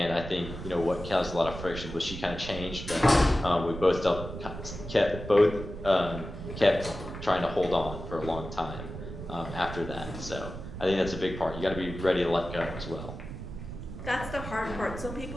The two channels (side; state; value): right; noise; rumble, 9 dB below the sound